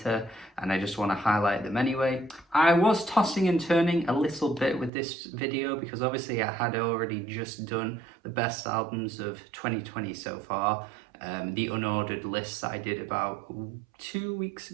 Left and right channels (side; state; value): left; drops out; at 4.9 s